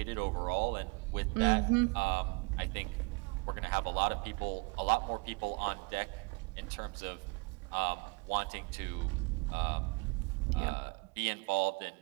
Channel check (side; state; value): left; quieter; 29.7 dB